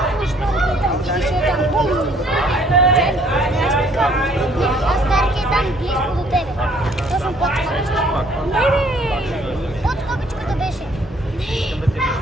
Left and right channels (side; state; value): both; normal; correlation 0.61